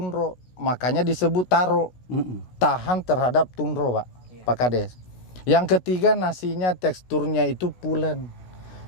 makanya disebut taro. Tahan terhadap tundro Pak Kades. Yang ketiga, nasinya teksturnya itu pulen.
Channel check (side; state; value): right; late; 16 ms